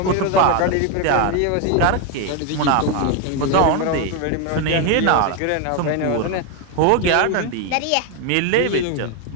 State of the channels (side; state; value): both; different; correlation 0.01